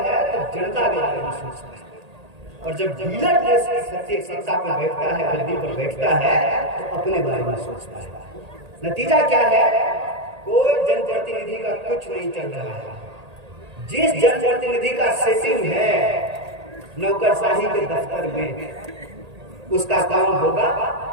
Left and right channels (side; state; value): left; late; 1.8 ms